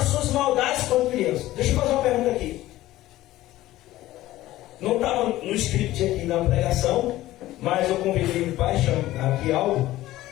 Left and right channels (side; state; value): right; quieter; 15.9 dB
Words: suas maldades quando criança. Deixa eu fazer uma pergunta aqui. Não estava no script aqui na pregação, mas eu convidei o pai, chama aqui algo,